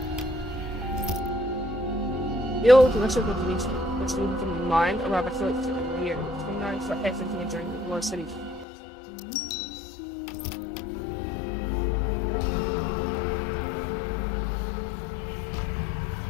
The old Commission of Police was moved from the mind, or rather collected in the year. Who knows what happened here during the War City?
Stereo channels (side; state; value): right; drops out; at 8.7 s